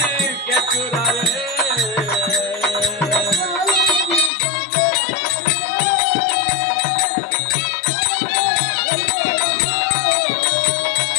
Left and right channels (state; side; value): drops out; right; at 4.3 s